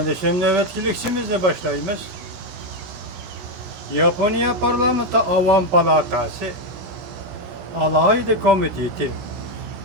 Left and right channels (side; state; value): left; late; 17 ms